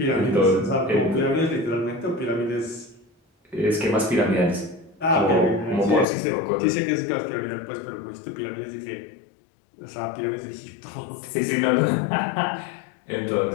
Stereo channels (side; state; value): right; drops out; at 6.1 s